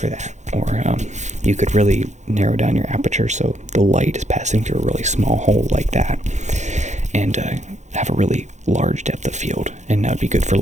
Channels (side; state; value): left; late; 0.34 ms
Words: that. Or you could really narrow down your aperture so the light is passing through a really small hole like that, and have a really large depth of field. And that would be good for